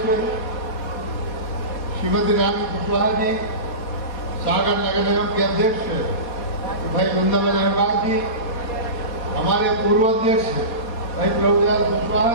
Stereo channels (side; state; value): right; late; 4.2 ms